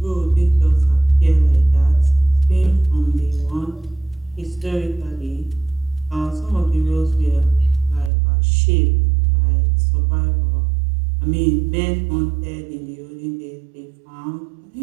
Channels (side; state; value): left; drops out; at 8.1 s